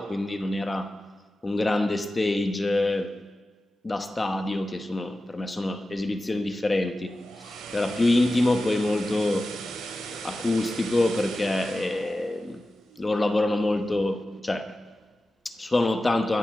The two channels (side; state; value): both; normal; correlation 0.94